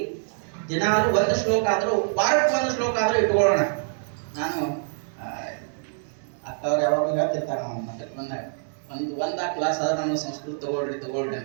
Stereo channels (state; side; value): silent; left; digital silence